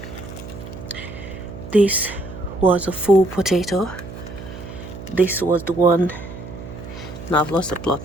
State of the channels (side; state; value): right; noise; hum, 12 dB below the sound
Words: this was a full potato. This was the one. Now I've lost the